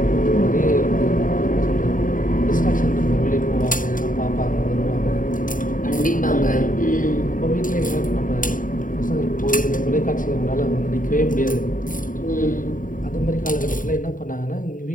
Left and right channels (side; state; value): right; late; 0.39 ms